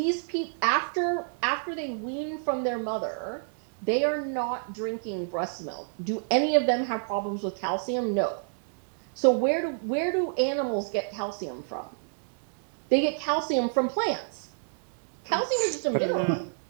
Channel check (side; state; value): left; silent; digital silence